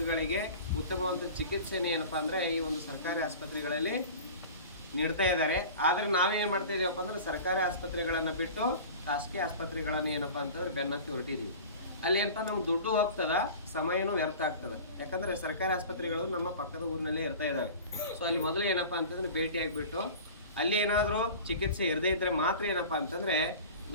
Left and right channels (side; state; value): both; inverted; correlation -0.38